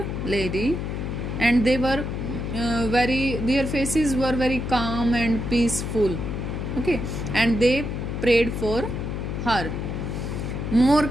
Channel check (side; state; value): left; noise; hum, 4 dB below the sound